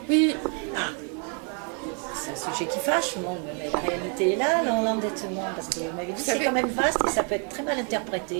Oui. C'est un sujet qui fâche, mais la réalité est là, l'endettement, parce que vous m'avez dit c'est quand même vaste et ça peut être très mal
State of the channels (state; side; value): quieter; left; 38.6 dB